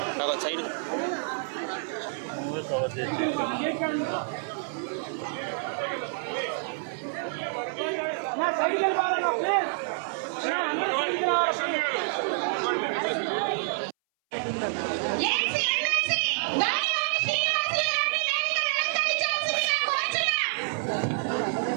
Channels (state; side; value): silent; left; 59 dB below the other